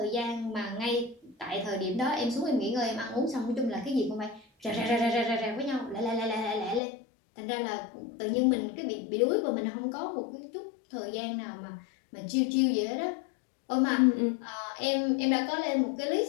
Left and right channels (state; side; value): drops out; right; at 6.8 s